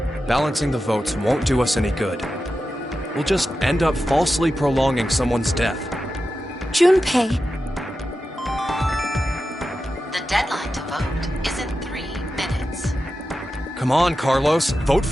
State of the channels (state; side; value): normal; both; correlation 0.91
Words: Balancing the votes won't do us any good. We'll just end up falsely prolonging someone's death. Junpei. The deadline to vote is in 3 minutes. Come on, Carlos. Vote